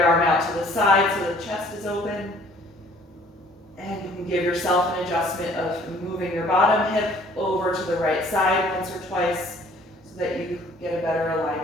arm out to the side so the chest is open. And you can give yourself an adjustment of moving your bottom hip over to the right side once or twice so that you get a better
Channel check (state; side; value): normal; both; correlation 0.56